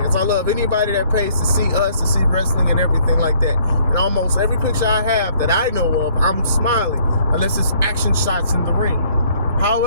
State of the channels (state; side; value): inverted; both; correlation -0.62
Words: I love anybody that pays to see us, to see wrestling and everything like that. And almost every picture I have that I know of, I'm smiling, unless it's action shots in the ring.